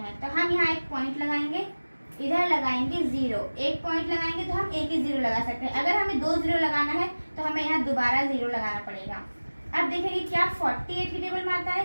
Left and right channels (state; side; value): inverted; both; correlation -1.00